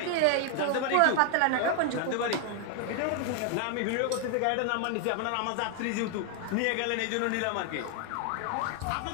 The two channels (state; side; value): different; both; correlation 0.00